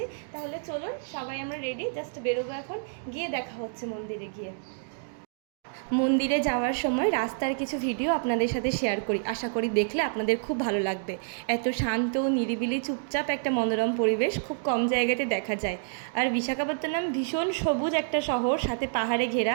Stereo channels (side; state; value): left; silent; digital silence